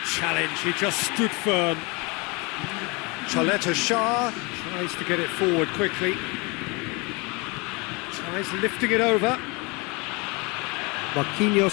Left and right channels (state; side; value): quieter; right; 28.0 dB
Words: challenge, he just stood firm. Chaleta Shah tries to get it forward quickly. Tries lifting it over.